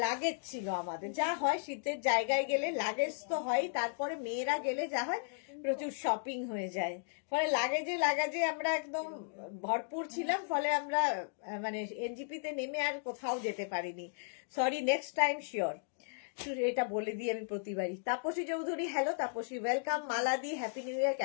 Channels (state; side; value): silent; right; digital silence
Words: লাগেজ ছিল আমাদের। যা হয় শীতের জায়গায় গেলে লাগেজ তো হয়, তারপরে মেয়েরা গেলে যা হয় প্রচুর শপিং হয়ে যায়, ফলে লাগেজে আমরা একদম ভরপুর ছিলাম, ফলে আমরা মানে এনজিপিতে নেমে আর কোথাও যেতে পারিনি। Sorry, next time sure. এটা বলে দিই আমি প্রতিবারই। Tapasi Chowdhury, hello Tapasi, welcome. মালাদি, হ্যাপি নিউ ইয়ার,